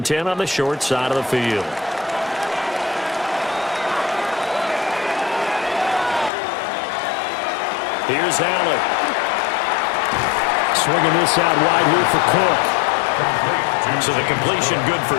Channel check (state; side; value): drops out; right; at 6.3 s